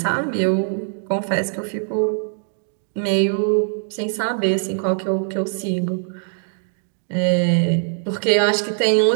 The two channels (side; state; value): left; silent; digital silence